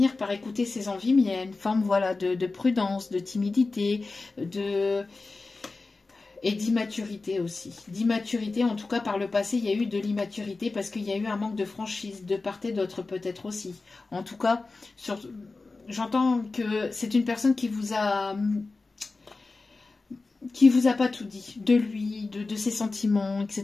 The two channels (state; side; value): quieter; right; 3.7 dB